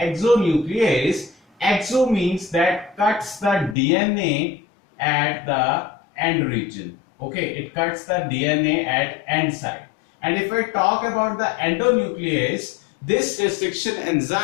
exo means that cuts the DNA at the end region. Okay, it cuts the DNA at end side. And if we talk about the endonuclease, this restriction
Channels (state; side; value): drops out; right; at 3.8 s